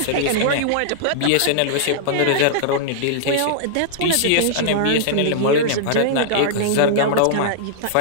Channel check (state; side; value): different; both; correlation -0.01